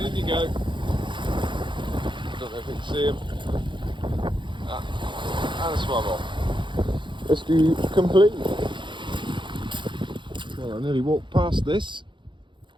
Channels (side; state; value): left; late; 0.23 ms